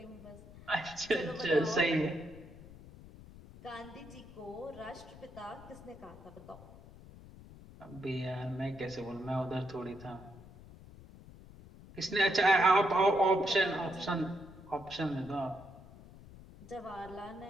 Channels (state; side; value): noise; left; rumble, 18 dB below the sound